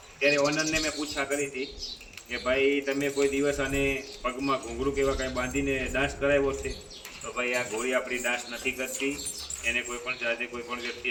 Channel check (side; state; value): both; identical; correlation 1.00